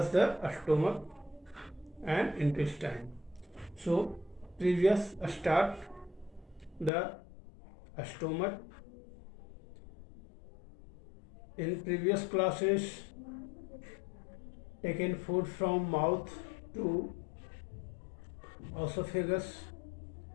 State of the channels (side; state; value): right; drops out; at 6.9 s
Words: the stomach and intestine. So previous start the stomach. In previous classes taken food from mouth to esophagus